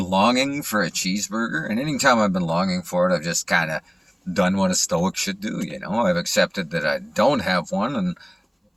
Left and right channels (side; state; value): both; identical; correlation 1.00